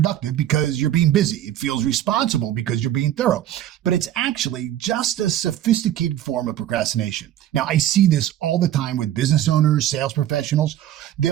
because you're being busy. It feels responsible because you're being thorough, but it's actually just a sophisticated form of procrastination. Now, I see this all the time with business owners, sales professionals.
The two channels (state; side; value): quieter; left; 12.2 dB